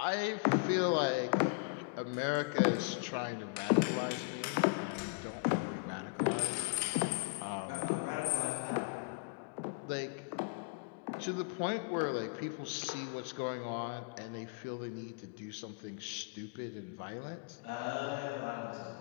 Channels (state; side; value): quieter; right; 31.5 dB